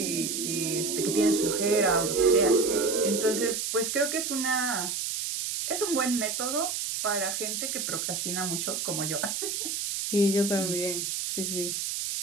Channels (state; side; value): noise; right; hiss, 2 dB below the sound